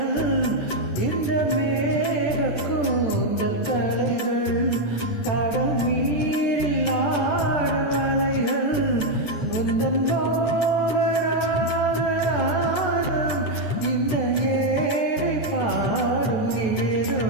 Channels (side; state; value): right; late; 14 ms